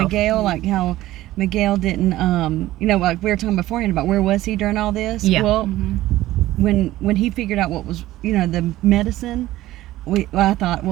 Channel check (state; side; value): quieter; left; 15.7 dB